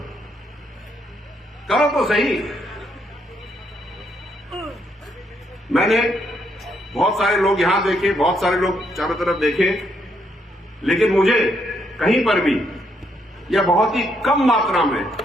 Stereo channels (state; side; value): normal; both; correlation 0.75